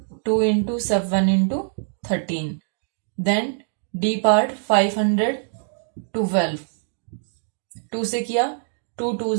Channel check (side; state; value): left; silent; digital silence